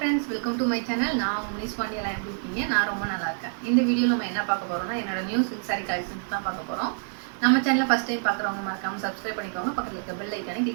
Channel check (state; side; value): silent; left; digital silence